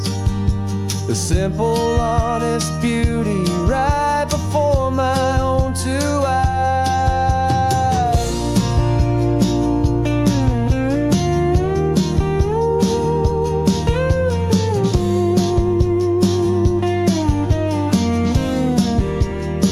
the simple, honest beauty right before my own two eyes.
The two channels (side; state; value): both; identical; correlation 1.00